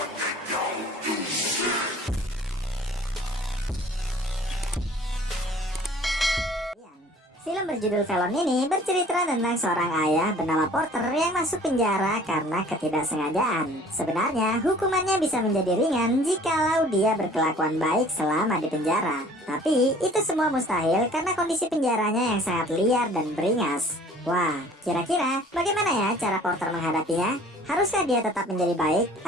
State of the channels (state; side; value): normal; both; correlation 0.51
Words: Film berjudul Velon ini bercerita tentang seorang ayah bernama Porter yang masuk penjara karena ketidaksengajaan. Sebenarnya hukumannya bisa menjadi ringan jikalau dia berkelakuan baik selama di penjara. Tapi itu semua mustahil karena kondisi penjaranya yang sangat liar dan beringas. Wah, kira-kira bagaimana ya cara Porter menghadapinya? Haruskah dia tetap menjadi baik